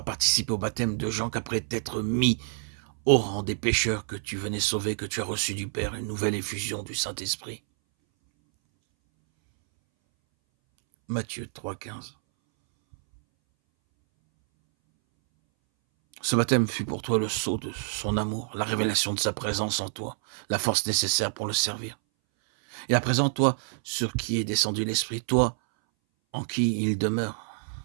participé au baptême de Jean, qu'après t'être mis au rang des pécheurs que tu venais sauver, que tu as reçu du Père une nouvelle effusion du Saint-Esprit. Matthieu 3,15. Ce baptême fut pour toi le sceau de son amour, la révélation de sa présence en toi, la force nécessaire pour le servir. Et à présent, toi, sur qui est descendu l'Esprit, toi, en qui il demeure,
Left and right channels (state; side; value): silent; left; 60 dB below the other